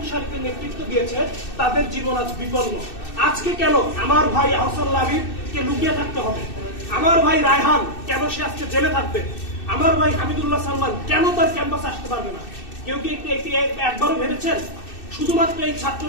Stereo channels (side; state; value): right; late; 2.6 ms